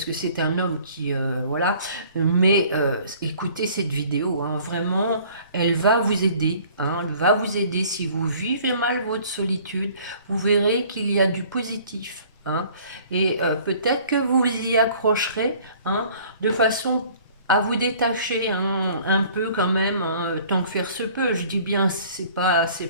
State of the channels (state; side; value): inverted; both; correlation -0.53